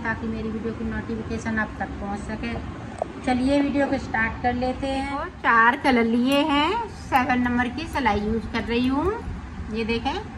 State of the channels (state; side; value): identical; both; correlation 1.00